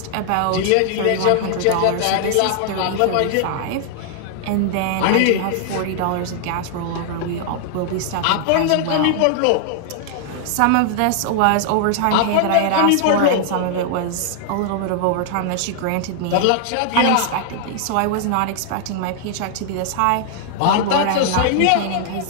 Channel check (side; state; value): both; different; correlation -0.01